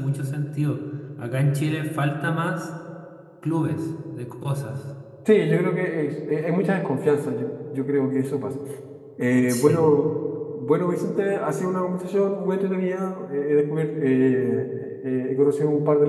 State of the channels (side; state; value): both; identical; correlation 1.00